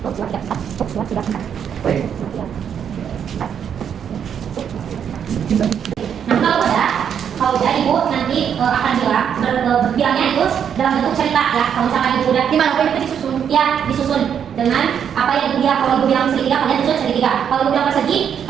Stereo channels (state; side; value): quieter; left; 8.2 dB